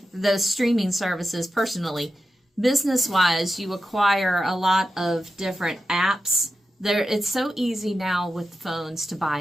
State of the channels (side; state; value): both; normal; correlation 0.91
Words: those streaming services personally. Business-wise, you acquire a lot of different apps. It's so easy now with phones to buy